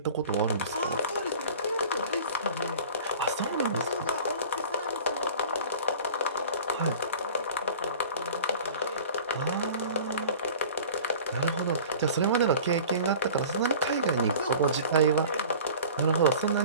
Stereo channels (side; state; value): both; inverted; correlation -0.43